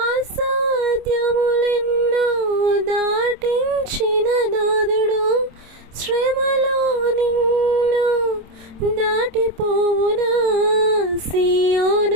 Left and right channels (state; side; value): late; left; 27 ms